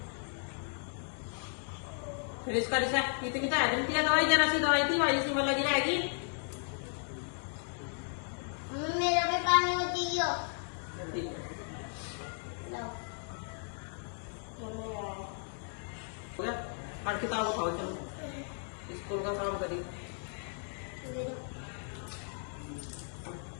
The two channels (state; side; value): silent; right; 54 dB below the other